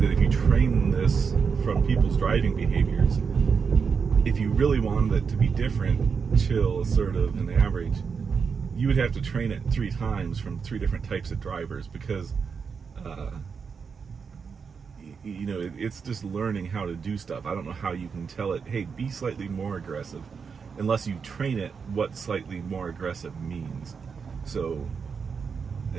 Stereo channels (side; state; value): left; quieter; 5.8 dB